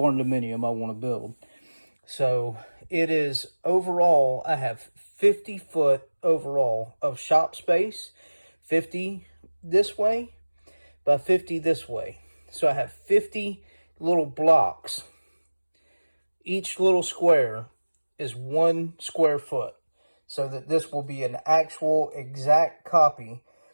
dominium I want to build. So it is overall, I have 50 foot overall of shop space, 50 this way by 50 this way. So I have 50 little blocks. Each little square is 1 square foot, so that this will be an actual exact copy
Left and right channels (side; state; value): both; inverted; correlation -1.00